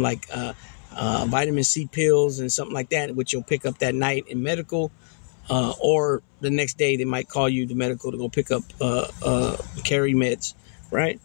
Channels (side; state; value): right; silent; 62 dB below the other